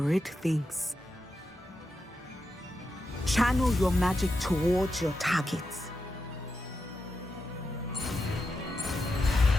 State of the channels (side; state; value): both; normal; correlation 0.88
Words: things. Channel your magic towards your targets.